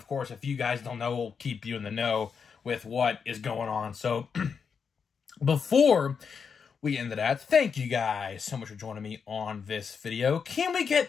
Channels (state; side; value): quieter; right; 6.2 dB